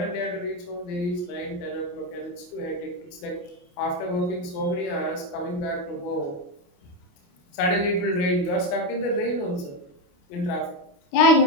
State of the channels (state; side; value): late; right; 28 ms